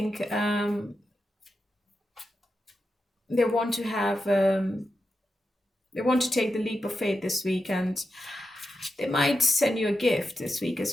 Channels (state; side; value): normal; both; correlation 0.88